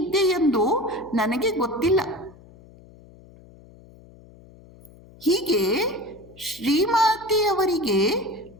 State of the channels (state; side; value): noise; left; hum, 23 dB below the sound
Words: ಎಂದು ನನಗೆ ಗೊತ್ತಿಲ್ಲ. ಹೀಗೆ ಶ್ರೀಮಾತೆಯವರಿಗೆ